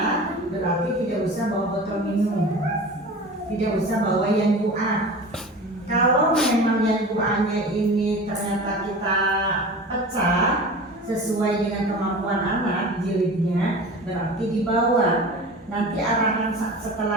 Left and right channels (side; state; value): both; normal; correlation 0.35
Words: berarti tidak usah bawa botol minum, tidak usah bawa yang doa. Kalau memang yang doanya ini ternyata kita pecah sesuai dengan kemampuan anak jilidnya, berarti dibawa. Nanti arahan